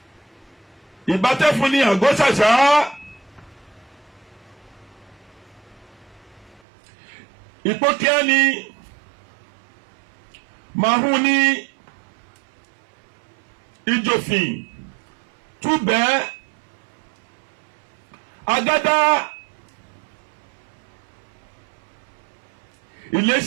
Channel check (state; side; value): drops out; left; at 6.6 s